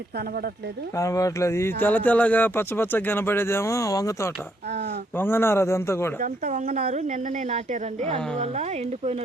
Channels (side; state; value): both; normal; correlation 0.73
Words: కనబడట్లేదు. ఈ తెల్లగా పచ్చగా కనబడేదేమో వంగ తోట, వంగనారు. అదంతా కూడా ఇదంతా వంగనారు, నిన్ననే నాటారండి. అందువల్ల